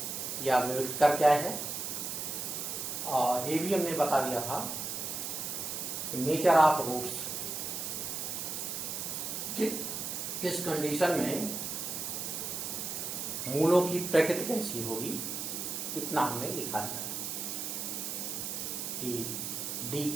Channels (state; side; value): noise; right; hiss, 4 dB below the sound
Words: या विविधकर क्या है। और ये भी हमने बता दिया था नेचर ऑफ रूट्स, किस कंडीशन में मूलों की प्रकृति कैसी होगी, इतना हमने लिखा था कि d